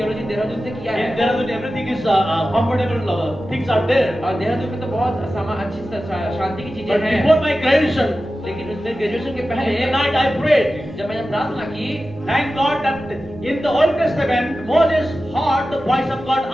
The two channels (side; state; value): both; normal; correlation 0.94